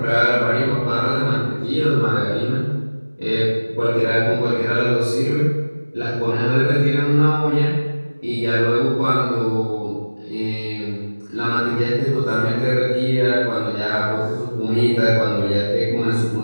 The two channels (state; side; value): inverted; both; correlation -1.00